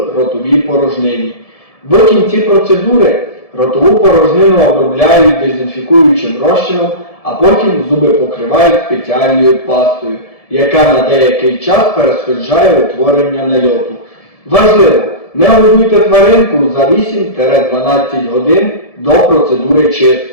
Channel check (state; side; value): late; right; 1.7 ms